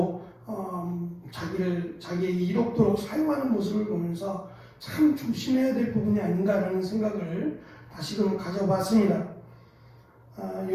자기의 이롭도록 사용하는 모습을 보면서 참 조심해야 될 부분이 아닌가라는 생각을 다시금 가져봤습니다.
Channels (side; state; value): both; identical; correlation 1.00